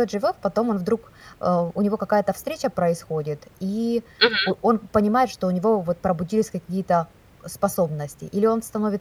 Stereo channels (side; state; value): both; identical; correlation 1.00